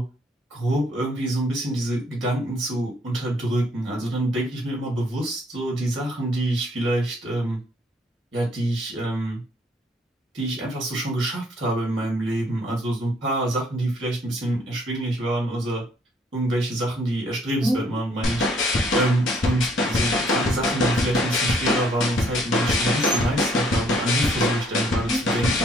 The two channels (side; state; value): both; normal; correlation 0.65